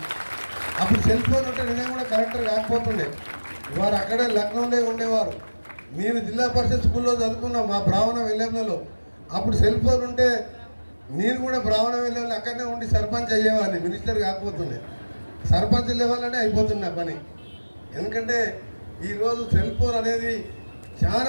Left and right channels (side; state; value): both; inverted; correlation -1.00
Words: అప్పుడు సెల్ ఫోన్ ఉంటే నేను కూడా కలెక్టర్ కాకపోతుండే. వారు అక్కడే లక్నోలో ఉండేవారు. నేను జిల్లా పరిషత్ స్కూల్లో చదువుకున్నా మా బ్రాహ్మణ విలేజ్లలో. అప్పుడు సెల్ ఫోన్ ఉంటే నేను కూడా బ్రాహ్మణ విలేజ్లో అక్కడనే ఉండి సర్పంచ్ అయ్యేవాడిని, మినిస్టర్ కాకపోతుండే. సర్పంచ్ లెవెల్లోనే అయిపోతున్నా పని. ఎందుకంటే ఈరోజు సెల్ ఫోన్ అనేది